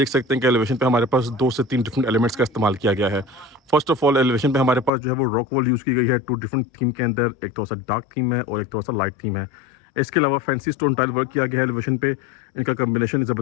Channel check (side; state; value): right; drops out; at 4.9 s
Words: सकते हैं कि एलिवेशन पे हमारे पास 2 से 3 डिफरेंट एलिमेंट्स का इस्तेमाल किया गया है। फर्स्ट ऑफ ऑल, एलिवेशन पे हमारे पास जो है वो रॉक वॉल यूज़ की गई है 2 डिफरेंट थीम के अंदर। एक थोड़ा सा डार्क थीम है और एक थोड़ा सा लाइट थीम है। इसके अलावा फैंसी स्टोन टाइल वर्क किया गया है एलिवेशन पे। इनका कम्बिनेशन